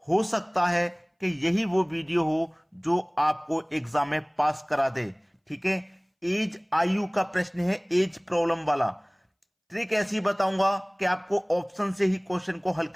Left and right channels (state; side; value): identical; both; correlation 1.00